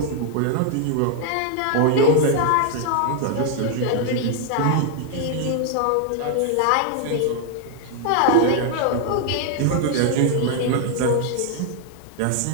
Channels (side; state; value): both; different; correlation 0.00